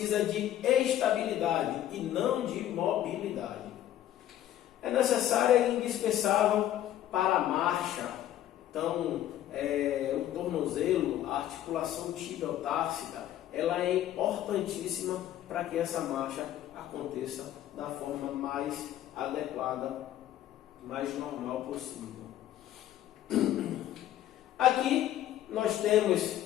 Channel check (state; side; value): quieter; right; 12.4 dB